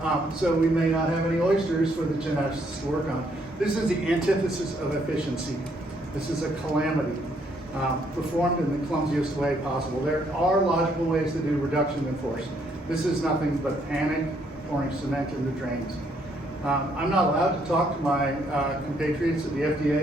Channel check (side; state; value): both; normal; correlation 0.70